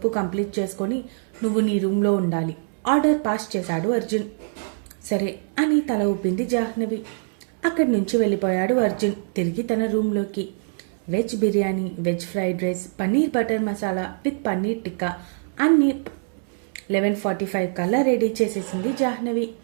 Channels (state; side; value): silent; left; 63 dB below the other